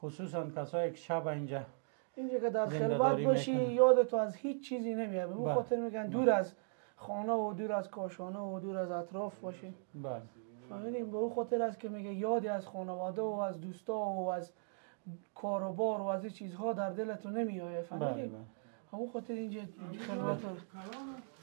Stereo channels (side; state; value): left; silent; digital silence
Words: خصوصا کسایی که شب اینجا که در خلوت باشی یاد تو از هیچ چیزی نمیاد. به اون خاطر میگن دور از خانه و دور از کاشانه و دور از اطراف باشی. بله. فهمیدیم به اون خاطر است که میگه یادی از خانواده و از دوستا و از کاروبار و از این چیزها در دلتون نمیآید. فهمیدیم؟ همون خاطر اینجا خلوت